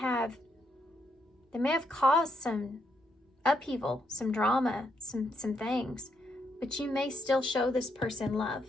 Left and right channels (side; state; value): both; normal; correlation 0.77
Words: caused some upheaval, some drama, some things, but you may still show this person love